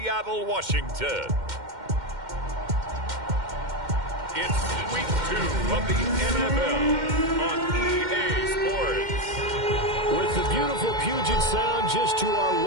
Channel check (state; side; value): late; left; 2.1 ms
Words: Washington, it's week 2 of the NFL on EA Sports. With the beautiful Puget Sound just to our